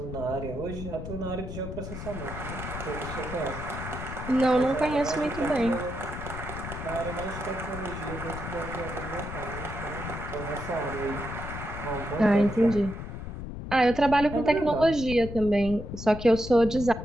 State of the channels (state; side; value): noise; left; rumble, 8 dB below the sound